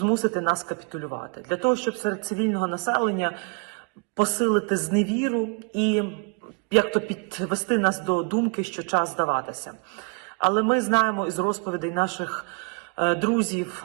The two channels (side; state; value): left; quieter; 31.9 dB